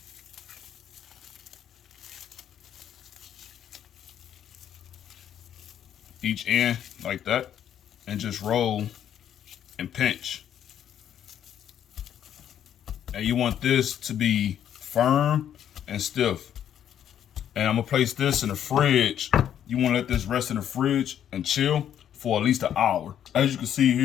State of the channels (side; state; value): right; quieter; 9.9 dB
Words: Each end like that, and just roll and pinch. And you want this to be firm and stiff. And I'm gonna place this in the fridge. You wanna let this rest in the fridge and chill for at least an hour. As you can see